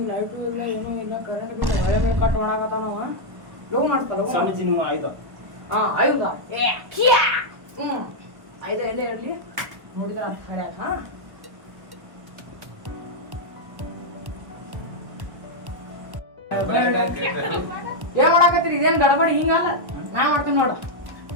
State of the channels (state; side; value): late; left; 1.1 ms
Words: ಲೈಟು ಇಲ್ಲ ಏನೂ ಇಲ್ಲ, ಕರೆಂಟ್ ಬಿಲ್ ಮಳೆ ಮೇಲೆ ಕಟ್ ಒಣಗತ್ತಾನವ. ಲಗು ಮಾಡ್ಕೊ ಲಗು. ಸ್ವಾಮೀಜಿ ನಿಮ್ಮ ಆಯ್ತು. ಹಾ ಐದ ಐದ ಎಲ್ಲೇ ಇರಲಿ ನೋಡಿದ್ರ ಹರ್ಯಾಕ. ಹಾ ಏನ್ ಮಾಡಾಕತ್ತೀರಿ? ಇದೇನ್ ಗಡಬಡಿ ಹಿಂಗಲ್ಲ, ನಾ ಮಾಡ್ತೀನಿ ನೋಡು.